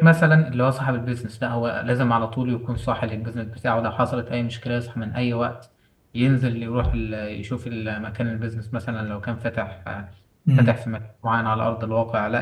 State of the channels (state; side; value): identical; both; correlation 1.00